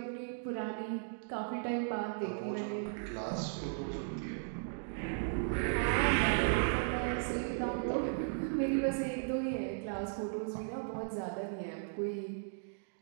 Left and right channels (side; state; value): left; silent; digital silence